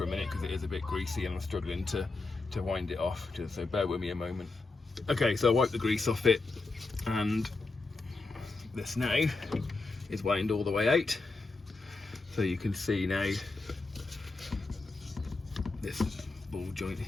a minute because it is a bit greasy and I'm struggling to wind it off, so bear with me a moment. Okay, so I wiped the grease off it, and this now is wound all the way out. So you can see now this ball joint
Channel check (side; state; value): right; quieter; 3.5 dB